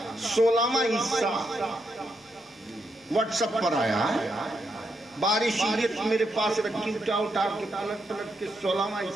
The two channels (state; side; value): normal; both; correlation 0.81